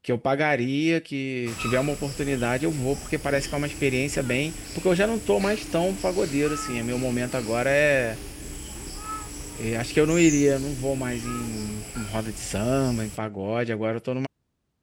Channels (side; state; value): both; identical; correlation 1.00